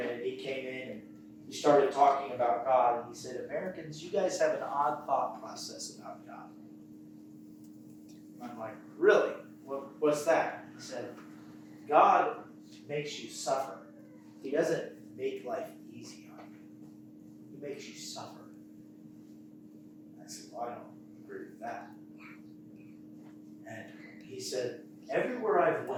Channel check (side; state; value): both; identical; correlation 1.00